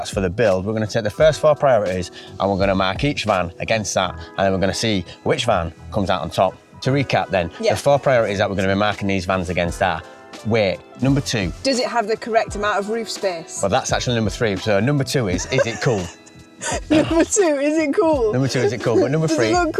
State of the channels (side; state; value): both; identical; correlation 1.00